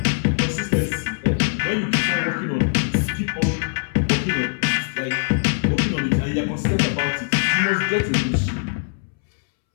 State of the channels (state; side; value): silent; right; 64 dB below the other